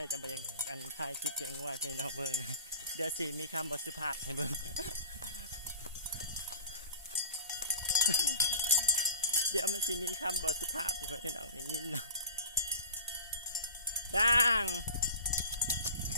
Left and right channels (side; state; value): both; inverted; correlation -0.38